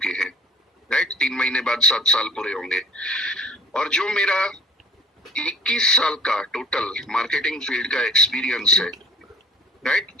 हैं, राइट। 3 महीने बाद 7 साल पूरे होंगे। और जो मेरा 21 साल का टोटल मार्केटिंग फील्ड का एक्सपीरियंस है, राइट,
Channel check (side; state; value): both; normal; correlation 0.50